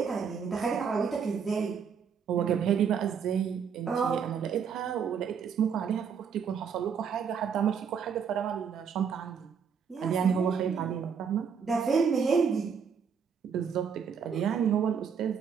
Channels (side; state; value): left; quieter; 6.8 dB